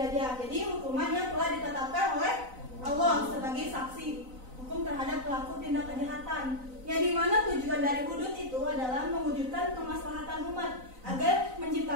Jadi hukuman yang telah ditetapkan oleh Allah sebagai saksi hukum terhadap pelaku tindak kejahatan. Yang dimana tujuan dari hudud itu adalah mewujudkan kemaslahatan umat agar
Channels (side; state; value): left; late; 3.9 ms